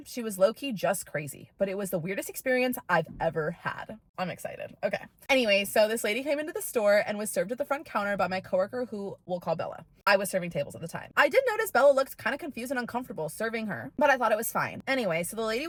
She was low-key just crazy, but it was the weirdest experience I've ever had. I'm excited. Okay. Anyway, so this lady came into the store and was served at the front counter by my coworker, who we'll call Bella. I was serving tables at the time. I did notice Bella looked kind of confused and uncomfortable serving her, but I thought it was fine. Anyway, so the lady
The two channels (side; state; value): both; identical; correlation 1.00